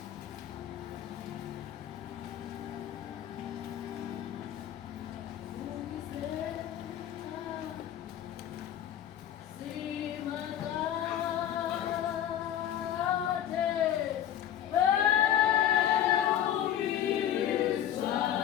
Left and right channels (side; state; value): right; quieter; 10.7 dB